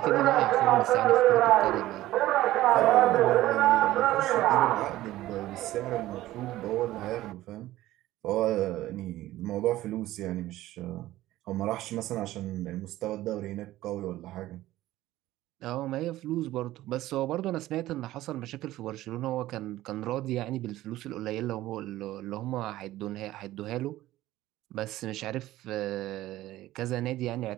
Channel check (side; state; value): left; quieter; 15.6 dB